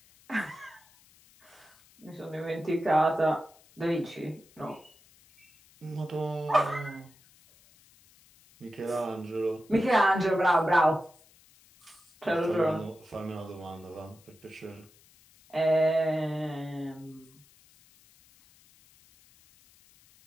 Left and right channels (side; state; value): left; noise; hiss, 28 dB below the sound